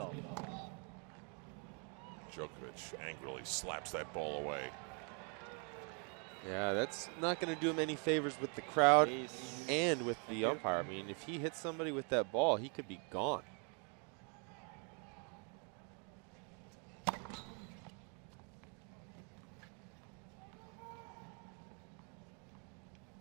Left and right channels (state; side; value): quieter; left; 38.0 dB